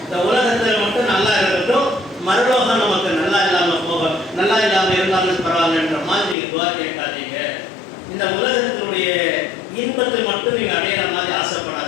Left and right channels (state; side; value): drops out; right; at 6.4 s